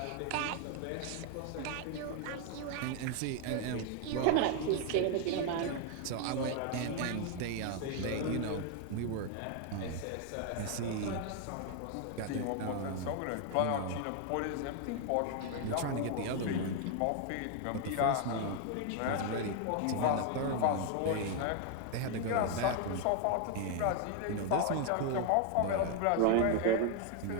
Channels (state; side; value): different; both; correlation 0.00